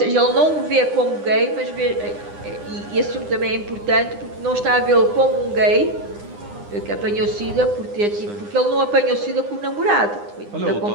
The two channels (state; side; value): late; left; 9.8 ms